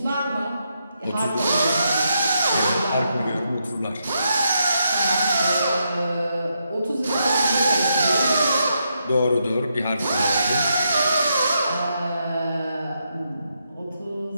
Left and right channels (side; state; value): both; inverted; correlation -0.81